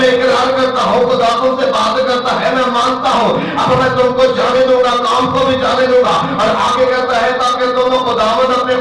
میں اقرار کرتا ہوں خدا تم سے بات کرتا ہے, میں مانتا ہوں, اب میں تم کو جانے دوں گا, کام کو بھی جانے دوں گا. اور آگے کہتا ہے تاکہ تم خداوند اپنے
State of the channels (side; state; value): both; identical; correlation 1.00